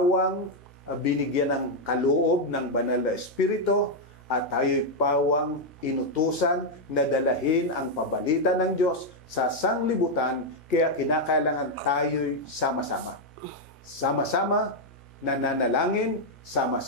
binigyan ng kaloob ng banal na espiritu at tayo'y pawang inutusan na dalahin ang pabalita ng Diyos sa sanglibutan, kaya kinakailangan tayo'y sama-sama. Sama-sama nananalangin,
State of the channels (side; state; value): both; normal; correlation 0.00